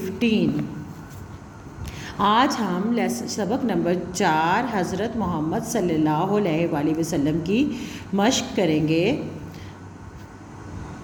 آج ہم سبق نمبر 4 حضرت محمد صلی اللہ علیہ وآلہ وسلم کی مشق کریں گے۔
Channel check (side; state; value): both; identical; correlation 1.00